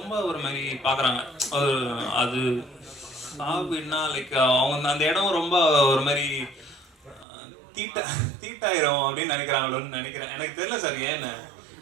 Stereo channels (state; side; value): drops out; left; at 7.2 s